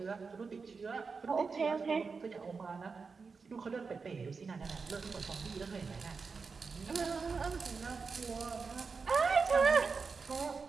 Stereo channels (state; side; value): quieter; left; 4.9 dB